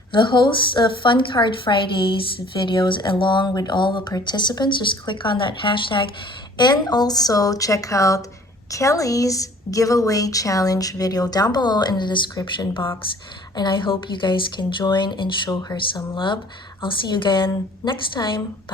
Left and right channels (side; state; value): both; normal; correlation 0.53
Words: the hosts of Fun Card Fridays videos along with all the participants. Just click on that hashtag, and also check out Kelly's giveaway challenge video down below in the description box. And I hope you guys can join and show her some love. I'll see you again next time.